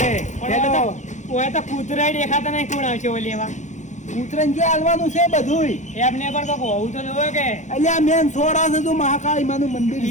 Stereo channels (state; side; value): late; right; 0.35 ms